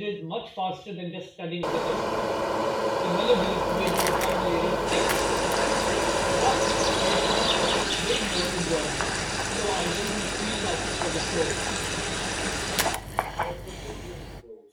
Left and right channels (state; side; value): identical; both; correlation 1.00